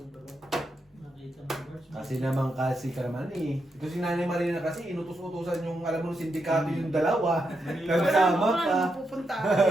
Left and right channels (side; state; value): both; normal; correlation 0.83